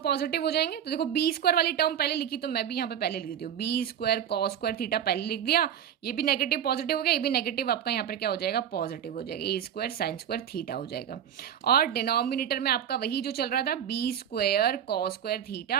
हो जाएंगे। तो देखो बी स्क्वायर वाली टर्म पहले लिखी, तो मैं भी यहाँ पे पहले लिख देती हूँ, b square cos square theta पहले लिख दिया। ये भी नेगेटिव पॉजिटिव हो गया, ये भी नेगेटिव आपका यहाँ पर क्या हो जाएगा, पॉजिटिव हो जाएगा, ए स्क्वायर साइन स्क्वायर थीटा हो जाएगा। और डिनोमिनेटर में आपका वही जो चल रहा था, B square cos square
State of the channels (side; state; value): left; quieter; 9.4 dB